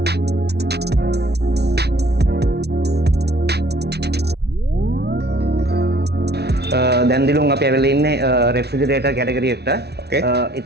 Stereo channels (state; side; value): late; left; 0.49 ms